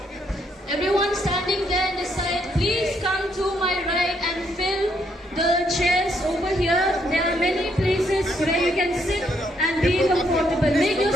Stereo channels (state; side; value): normal; both; correlation 0.73